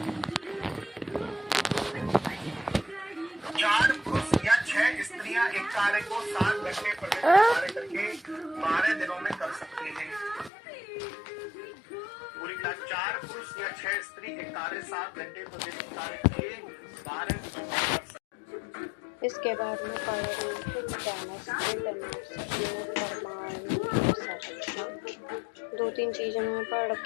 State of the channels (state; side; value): drops out; right; at 10.5 s